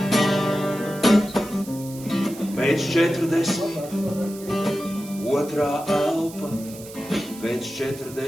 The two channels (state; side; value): noise; right; hiss, 17 dB below the sound